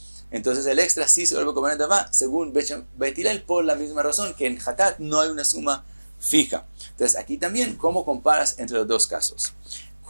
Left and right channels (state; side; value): inverted; both; correlation -1.00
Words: entonces el extra sí se vuelve Korban Nedavá según Bet Hillel, por la misma razón que en Hatat no hay una suma fija. Entonces aquí también, ¿cómo comparas entre los dos casos?